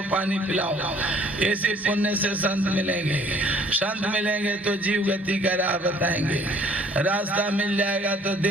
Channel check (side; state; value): both; normal; correlation 0.57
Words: पानी पिलाओ, इसी पुण्य से संत मिलेंगे। संत मिलेंगे तो जीव गति का राह बताएंगे। रास्ता मिल जाएगा तो